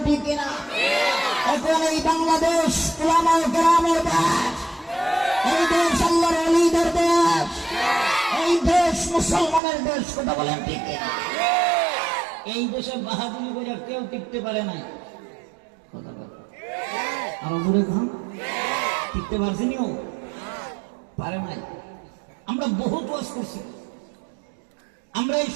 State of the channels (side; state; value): left; drops out; at 9.6 s